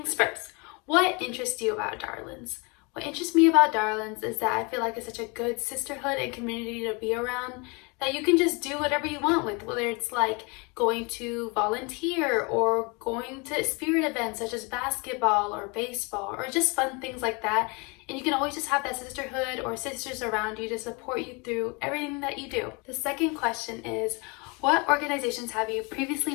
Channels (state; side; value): quieter; right; 29.9 dB